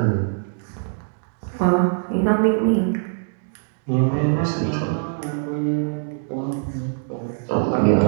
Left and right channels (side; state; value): left; silent; digital silence